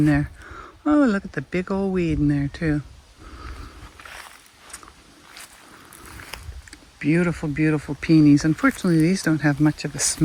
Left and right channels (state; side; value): identical; both; correlation 1.00